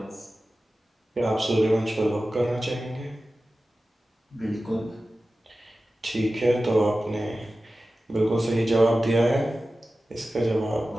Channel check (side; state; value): both; normal; correlation 0.95